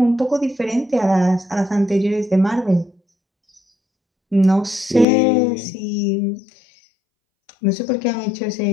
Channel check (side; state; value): right; drops out; at 5.1 s